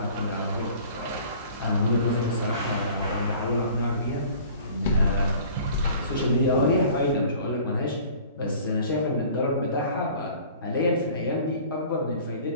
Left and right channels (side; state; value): both; inverted; correlation -0.48